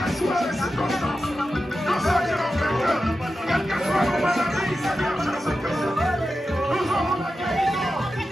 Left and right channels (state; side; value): normal; both; correlation 0.92